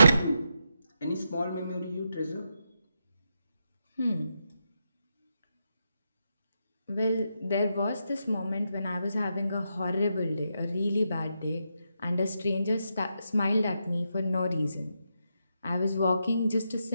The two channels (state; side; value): inverted; both; correlation -0.84